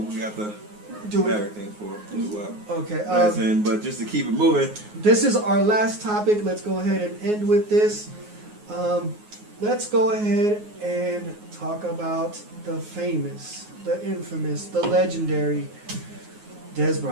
we got to do everything for. Okay. But just to keep it moving. This is our last topic. Let's go ahead and end with this. Let's go ahead and talk about the famous, the infamous, the legendary Dez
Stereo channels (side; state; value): left; late; 9.5 ms